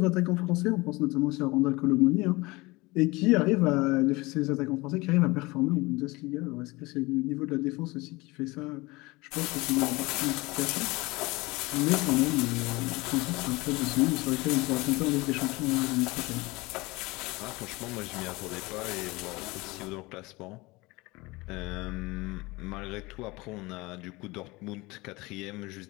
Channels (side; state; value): right; quieter; 22.8 dB